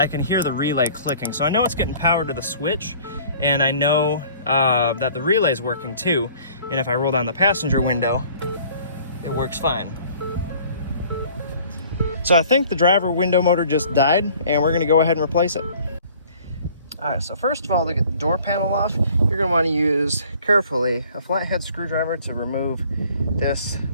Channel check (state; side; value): inverted; both; correlation -0.53